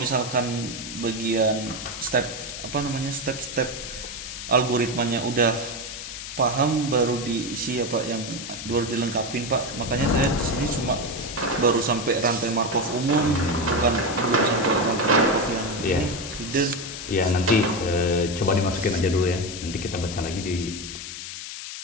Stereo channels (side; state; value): left; noise; hiss, 9 dB below the sound